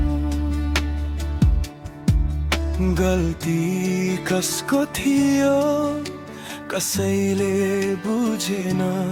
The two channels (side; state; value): both; identical; correlation 1.00